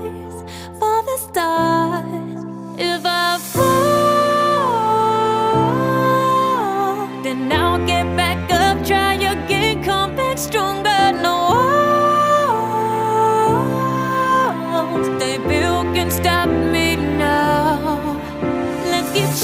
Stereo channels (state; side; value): identical; both; correlation 1.00